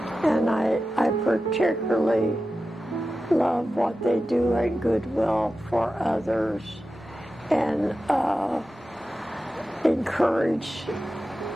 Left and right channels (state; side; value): normal; both; correlation 0.92